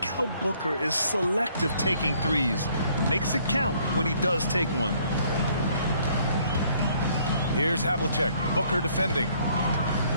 how Booker is selective taking threes. Makes it count when he does take one. Here's Havlicek. Booker defending.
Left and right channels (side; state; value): both; inverted; correlation -0.64